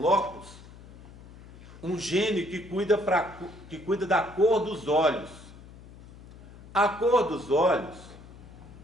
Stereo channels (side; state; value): left; noise; hum, 19 dB below the sound